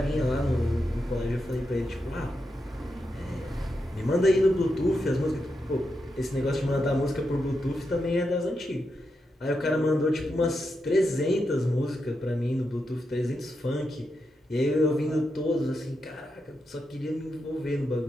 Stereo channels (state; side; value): normal; both; correlation 0.86